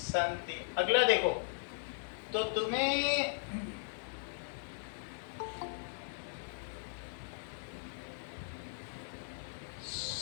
अगला देखो, तो तुम्हें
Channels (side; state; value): right; silent; digital silence